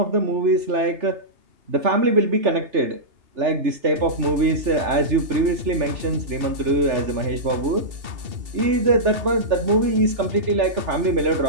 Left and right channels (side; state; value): left; late; 3.4 ms